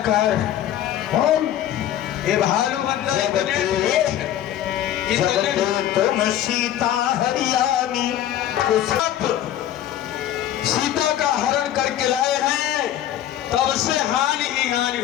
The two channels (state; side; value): quieter; right; 11.7 dB